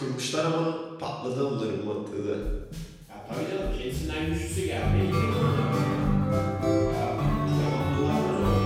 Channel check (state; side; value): identical; both; correlation 1.00